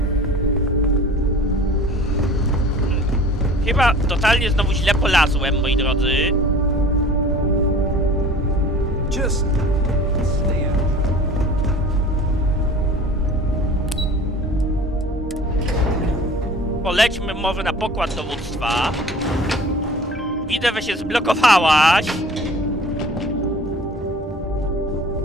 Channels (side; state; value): both; normal; correlation 0.44